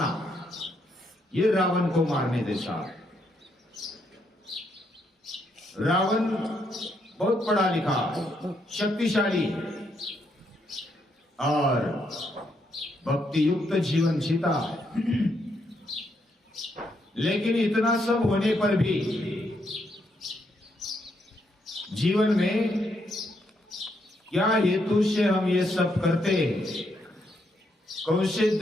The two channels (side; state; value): both; normal; correlation 0.76